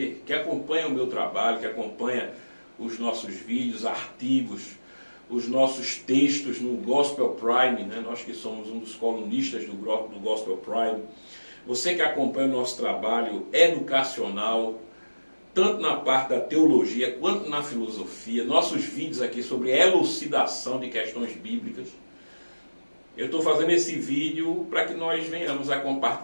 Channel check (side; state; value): both; inverted; correlation -1.00